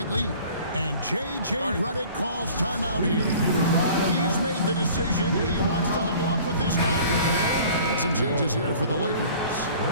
lead. And J.J. Redick calls timeout here. He's made the decision. He wants to huddle up with this guy. And some changes here for the Lakers.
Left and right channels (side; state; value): both; inverted; correlation -0.48